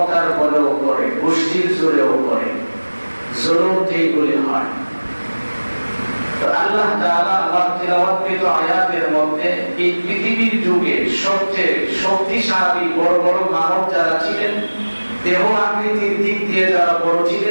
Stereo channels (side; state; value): both; inverted; correlation -1.00